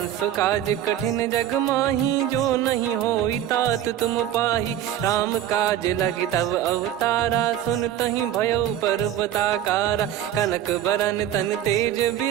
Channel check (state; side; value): quieter; left; 11.5 dB